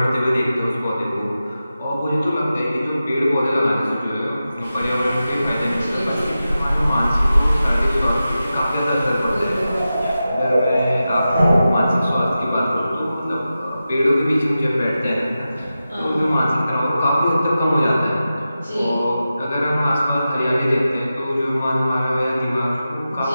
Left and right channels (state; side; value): inverted; both; correlation -0.92